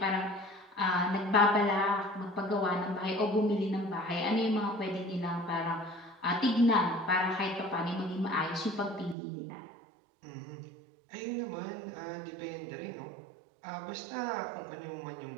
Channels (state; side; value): drops out; left; at 9.2 s